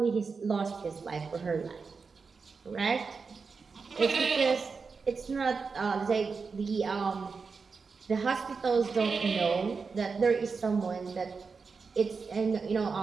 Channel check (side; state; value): left; quieter; 4.9 dB